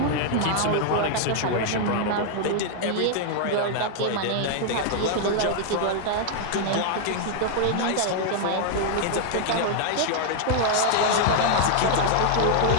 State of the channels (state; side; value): different; both; correlation 0.00